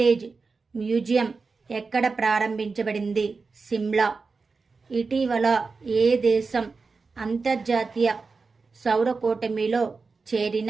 museum ఎక్కడ ప్రారంభించబడింది? సిమ్లా. ఇటీవల ఏ దేశం అంతర్జాతీయ సౌర కూటమిలో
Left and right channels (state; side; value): quieter; left; 4.4 dB